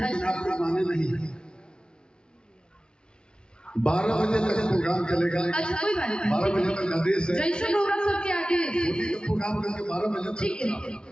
आप लोग माने नहीं। 12 बजे तक प्रोग्राम चलेगा। अच्छा कोई बात नहीं, 12 बजे तक आदेश है। जैसे होगा सबके आगे होली का प्रोग्राम करके 12 बजे तक। ठीक है।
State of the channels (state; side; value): late; right; 0.054 ms